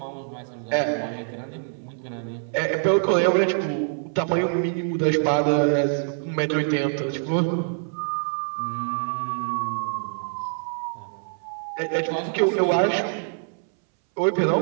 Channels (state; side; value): silent; left; 62 dB below the other